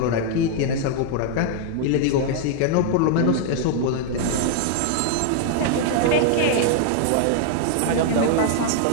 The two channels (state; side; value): different; both; correlation -0.01